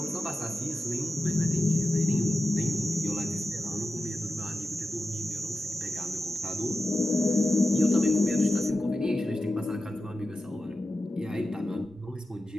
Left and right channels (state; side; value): normal; both; correlation 0.92